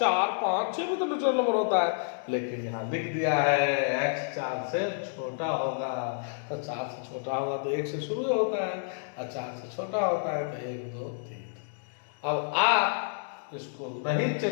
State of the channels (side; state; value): right; silent; digital silence